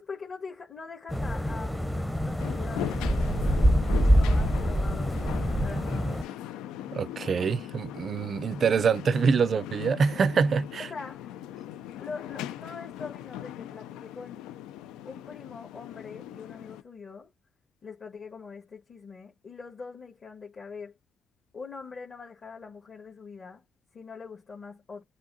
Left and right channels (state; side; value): normal; both; correlation 0.85